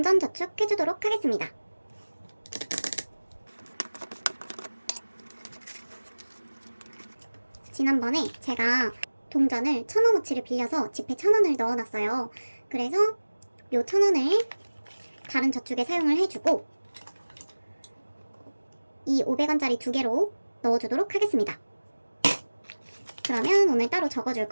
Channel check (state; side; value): inverted; both; correlation -1.00